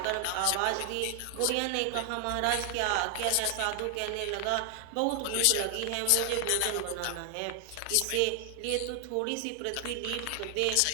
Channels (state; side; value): different; both; correlation 0.00